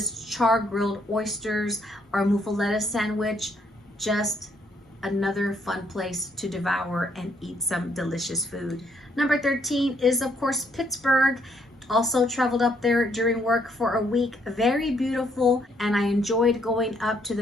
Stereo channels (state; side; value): normal; both; correlation 0.70